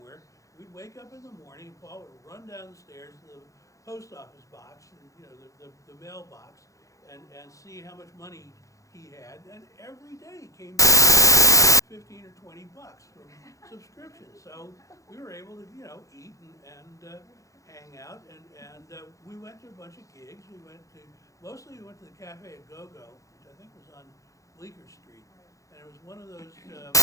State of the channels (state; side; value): late; right; 0.16 ms